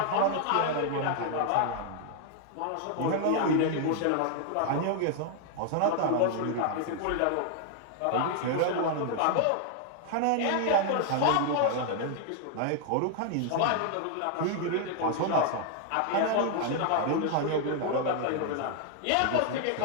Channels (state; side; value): different; both; correlation 0.00